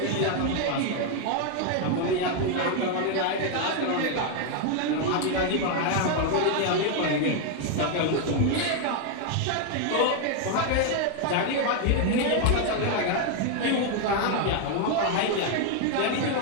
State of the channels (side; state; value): both; different; correlation 0.01